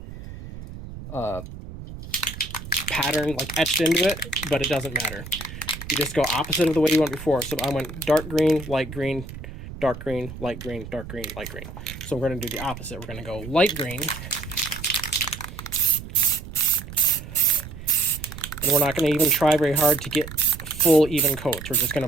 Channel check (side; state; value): right; noise; rumble, 12 dB below the sound